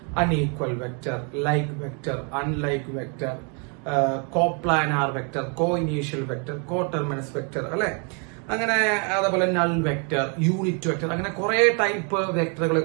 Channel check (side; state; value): left; quieter; 37.2 dB